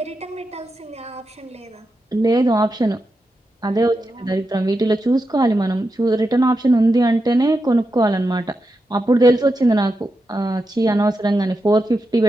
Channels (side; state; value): both; normal; correlation 0.88